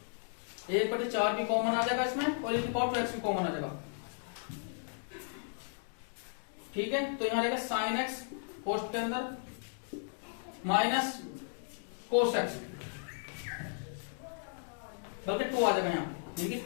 1/4 भी कॉमन आ जाएगा इसमें और एक पावर 2x भी कॉमन आ जाएगा। ठीक है, तो यहां रहेगा sin x कोष्ठ के अंदर माइनस cos x, बल्कि 2 आ जाएगा यहाँ, यानी कि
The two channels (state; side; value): silent; right; digital silence